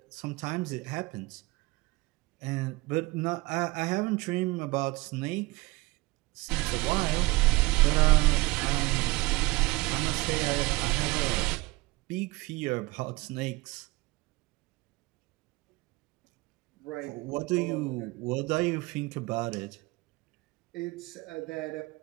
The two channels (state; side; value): quieter; left; 22.4 dB